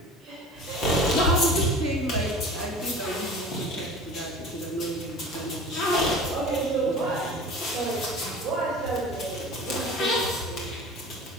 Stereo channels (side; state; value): both; normal; correlation 0.38